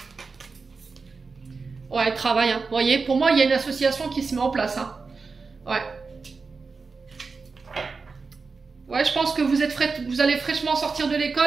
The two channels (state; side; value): quieter; left; 4.5 dB